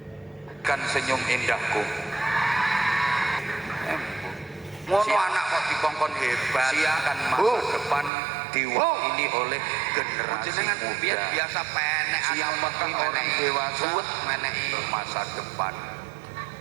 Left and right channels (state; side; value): drops out; left; at 8.1 s